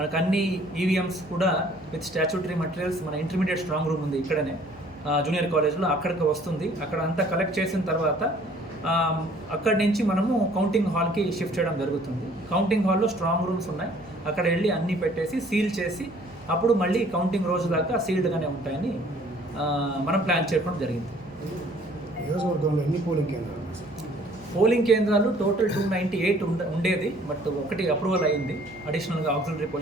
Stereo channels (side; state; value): right; noise; hum, 24 dB below the sound